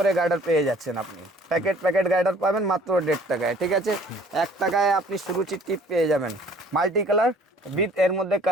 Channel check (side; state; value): both; normal; correlation 0.54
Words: গার্ডার পেয়ে যাচ্ছেন আপনি, প্যাকেট গার্ডার পাবেন মাত্র 1.5 টাকায়, ঠিক আছে। 1 টাকায় আপনি সুরুচির টিপ পেয়ে যাবেন, মাল্টি কালার বিথ এর মধ্যে